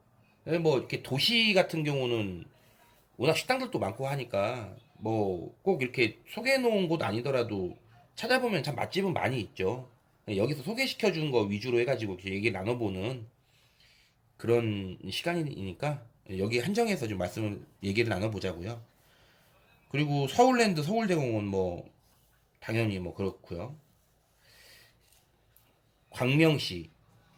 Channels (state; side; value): identical; both; correlation 1.00